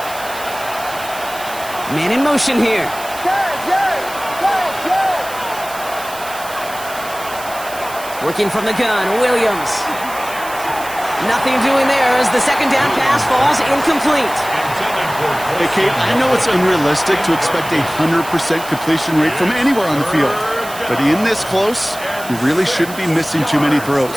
Man in motion here. Working from the gun, Williams. Nothing doing there as the second down pass falls incomplete. Hey, Kate, I know it's unrealistic to expect a 100% completion rate from anywhere on the field. But in this close, you really shouldn't be missing too many throws.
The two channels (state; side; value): noise; right; hiss, 14 dB below the sound